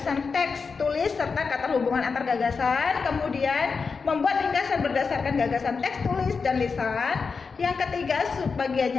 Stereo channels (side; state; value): right; quieter; 5.0 dB